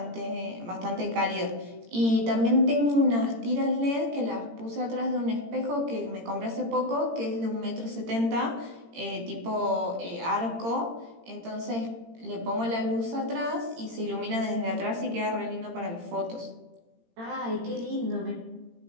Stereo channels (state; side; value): late; left; 18 ms